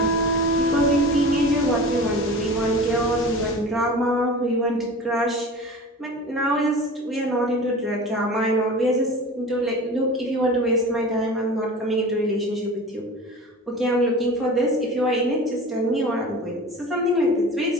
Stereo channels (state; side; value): normal; both; correlation 0.36